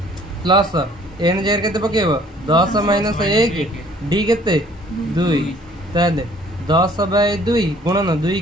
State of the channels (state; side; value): normal; both; correlation 0.57